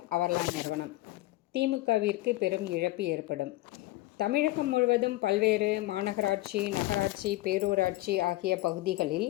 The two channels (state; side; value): quieter; right; 18.1 dB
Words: அவர்லான் நிறுவனம். திமுகவிற்கு பெரும் இழப்பு ஏற்படும். தமிழகம் முழுவதும் பல்வேறு மாநகராட்சி, நகராட்சி, பேரூராட்சி ஆகிய பகுதிகளில்